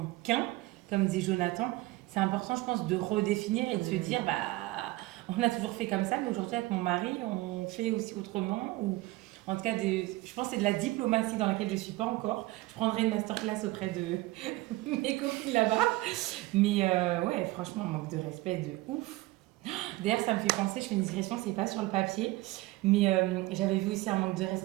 qu'un, comme disait Jonathan, c'est important, je pense, de redéfinir et de se dire, on a toujours fait comme ça, mais aujourd'hui, avec mon mari, on fait aussi autrement. Ou en tout cas, je pense que c'est de la diplomatie dans laquelle je ne suis pas encore. Je prendrai une masterclass auprès de mes copines là-bas. Mais ouais, franchement, manque de respect de ouf. D'ailleurs, ça me fait penser, je fais une digression, c'est pas sur le papier, mais j'avais vu aussi un manque de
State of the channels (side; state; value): left; quieter; 19.4 dB